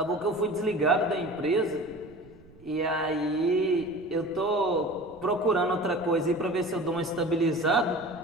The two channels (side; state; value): right; noise; rumble, 24 dB below the sound